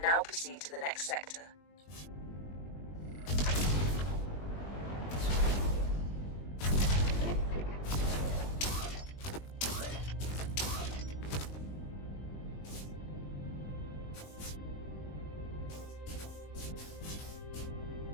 now proceed to the next sector.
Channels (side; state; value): right; late; 20 ms